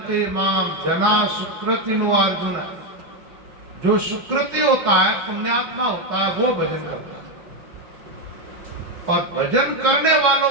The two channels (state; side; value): late; left; 5.4 ms